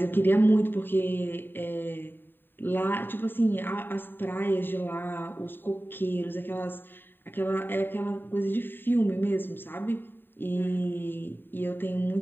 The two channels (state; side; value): late; right; 0.095 ms